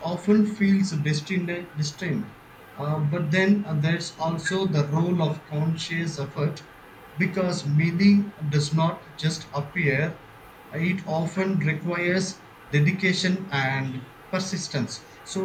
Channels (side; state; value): both; identical; correlation 1.00